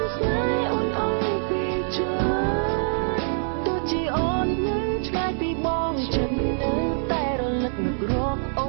ស្នេហ៍អូនអង្គពីចិនទោះជាអូននៅឆ្ងាយពីបងចិននៅតែរលឹកនឹករកអ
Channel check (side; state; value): left; silent; 60 dB below the other